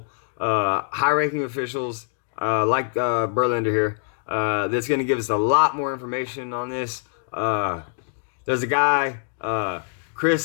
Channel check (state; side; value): silent; right; digital silence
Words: high-ranking officials, like Berlander here, that's going to give us a lot more information on this. There's a guy,